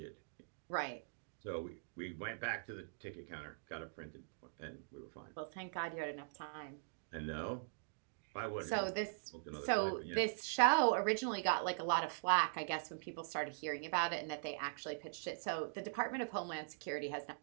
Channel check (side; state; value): left; silent; digital silence